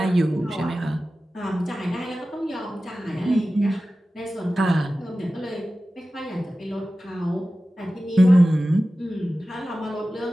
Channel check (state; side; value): normal; both; correlation 0.95